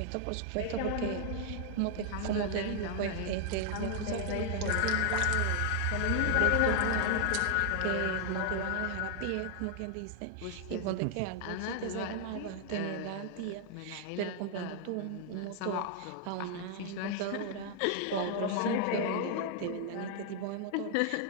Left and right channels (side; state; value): both; different; correlation 0.00